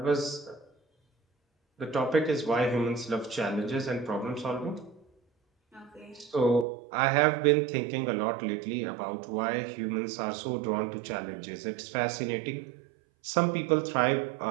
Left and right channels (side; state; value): left; drops out; at 6.7 s